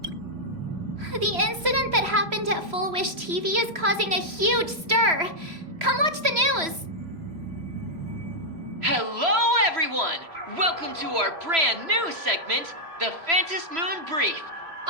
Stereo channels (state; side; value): late; left; 3.0 ms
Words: The incident that happened at Fulwish TV is causing a huge stir. Come watch the news. Hello, everyone! Welcome to our brand new segment, the Phantasmoon Brief.